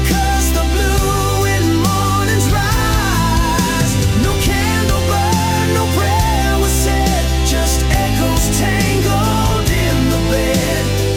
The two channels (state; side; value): identical; both; correlation 1.00